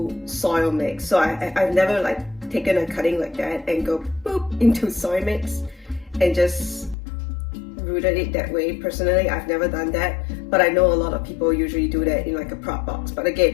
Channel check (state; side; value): drops out; right; at 7.0 s